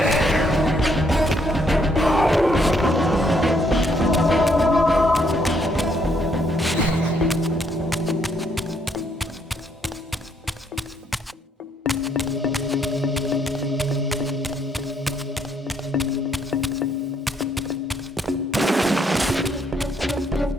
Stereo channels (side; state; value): both; normal; correlation 0.70